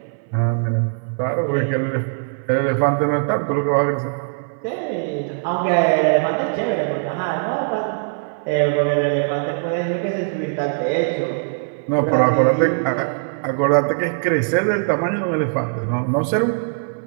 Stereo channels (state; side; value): silent; left; 59 dB below the other